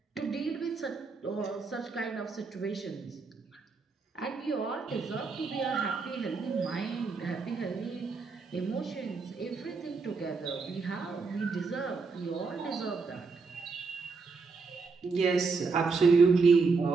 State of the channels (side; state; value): left; quieter; 4.5 dB